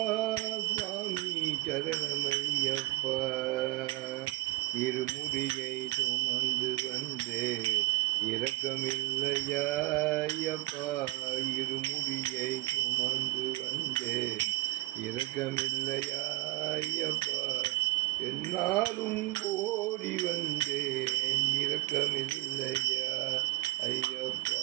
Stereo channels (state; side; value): quieter; left; 20.6 dB